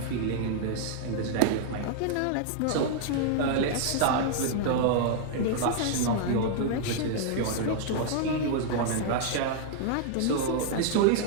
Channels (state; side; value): different; both; correlation -0.01